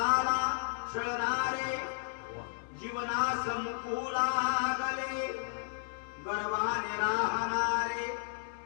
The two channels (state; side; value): silent; right; digital silence